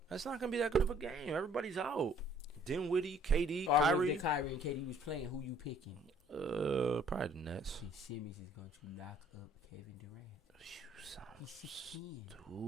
That's not gonna be that good of a game. Everybody's out. Dinwiddie, KD, Kyrie. Kyrie and KD was playing. Who you picking? Probably the Nets. Simmons is going to lock up Kevin Durant. You sound He's 16.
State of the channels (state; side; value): normal; both; correlation 0.58